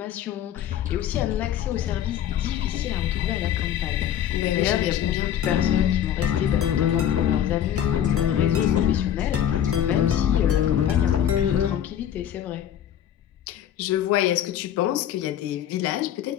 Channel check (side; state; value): right; quieter; 10.3 dB